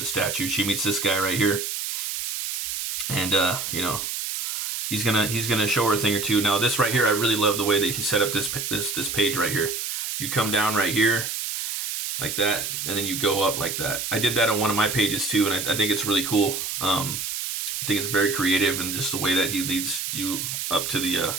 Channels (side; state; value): right; noise; hiss, 3 dB below the sound